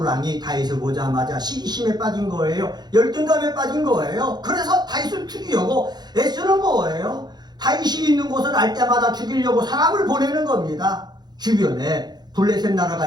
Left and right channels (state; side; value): late; left; 0.20 ms